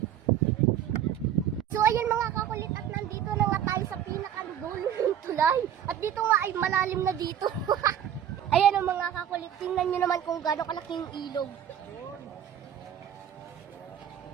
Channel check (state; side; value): quieter; left; 10.0 dB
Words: So ayan mga kakulit, at nandito na nga tayo sa pinakadulo ng tulay. At dito nga ay malalim na dito. Ayan ang mga kakulit, tingnan nyo naman kung gaano kalaking ilog.